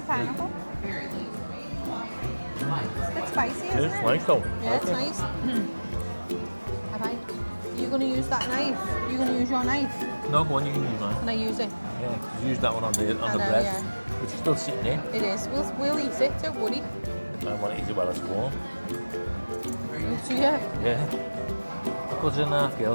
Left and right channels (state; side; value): inverted; both; correlation -1.00